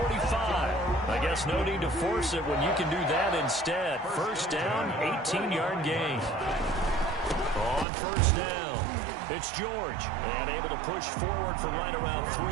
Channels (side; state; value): left; drops out; at 7.9 s